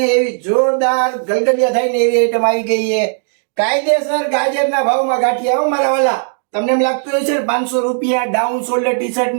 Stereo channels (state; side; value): silent; left; digital silence